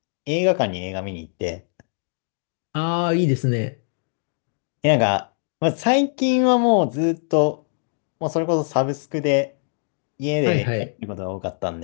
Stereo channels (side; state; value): right; silent; digital silence